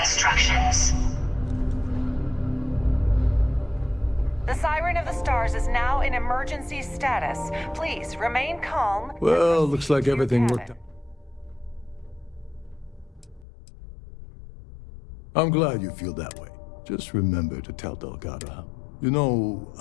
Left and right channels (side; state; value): right; drops out; at 13.5 s